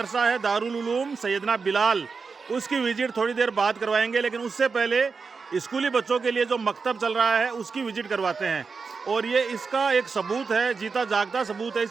है दारुल उलूम सैयदना बिलाल, उसकी विज़िट थोड़ी देर बाद करवाएंगे, लेकिन उससे पहले स्कूली बच्चों के लिए जो मकतब चल रहा है उसकी विज़िट करवाते हैं। और ये इसका एक सबूत है, जीता जागता सबूत है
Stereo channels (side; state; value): left; quieter; 4.9 dB